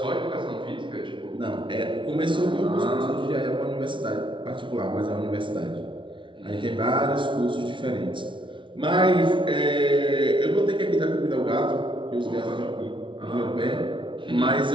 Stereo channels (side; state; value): left; late; 0.24 ms